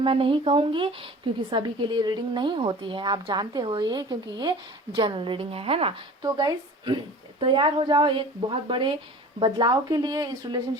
नहीं कहूंगी क्योंकि सभी के लिए रीडिंग नहीं होती है, आप जानते हो ये, क्योंकि ये जनरल रीडिंग है ना। तो गाइस तैयार हो जाओ एक बहुत बड़े बदलाव के लिए। इस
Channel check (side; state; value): both; normal; correlation 0.42